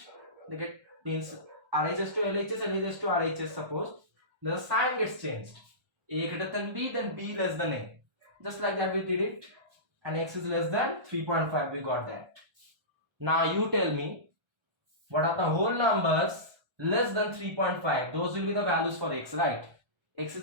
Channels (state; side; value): late; left; 1.3 ms